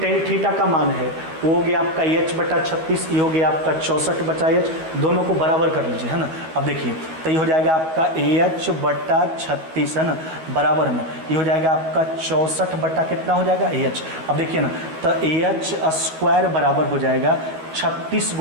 थीटा का मान है, वो हो गया आपका एच बटा 36, ये हो गया आपका 64 बटा एच, दोनों को बराबर कर लीजिए, है ना। अब देखिए तो ये हो जाएगा आपका एच बटा 36, है ना, बराबर में ये हो जाएगा आपका 64 बटा कितना हो जाएगा एच। अब देखिए ना तो एच स्क्वायर बराबर हो जाएगा 36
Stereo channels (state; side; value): late; left; 13 ms